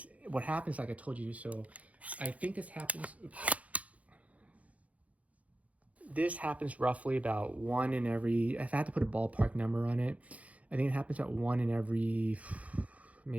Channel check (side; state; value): left; late; 0.068 ms